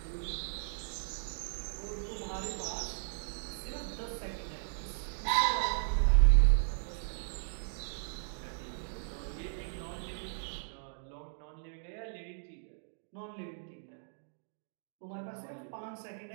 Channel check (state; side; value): silent; left; digital silence